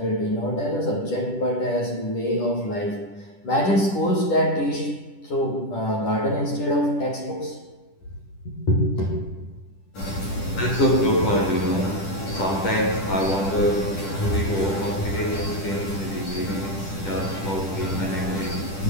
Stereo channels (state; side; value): late; right; 10 ms